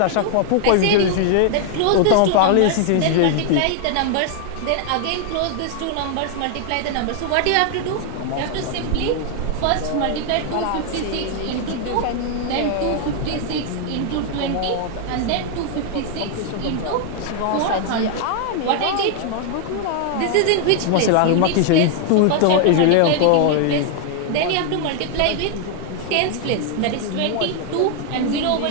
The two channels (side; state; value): both; different; correlation 0.00